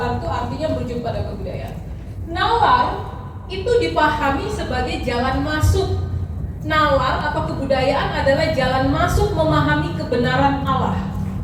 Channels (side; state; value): both; identical; correlation 1.00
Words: itu artinya merujuk pada kebudayaan. Nalar itu dipahami sebagai jalan masuk. Nalar atau kebudayaan adalah jalan masuk memahami kebenaran Allah.